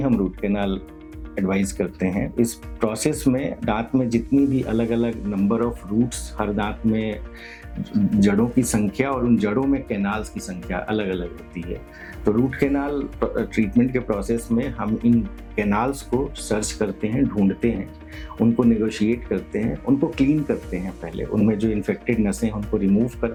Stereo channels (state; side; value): identical; both; correlation 1.00